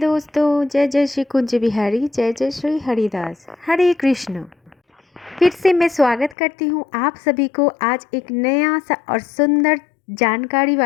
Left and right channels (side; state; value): right; drops out; at 6.4 s